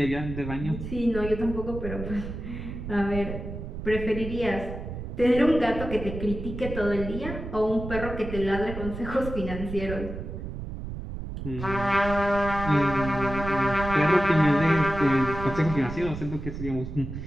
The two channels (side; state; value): right; noise; rumble, 8 dB below the sound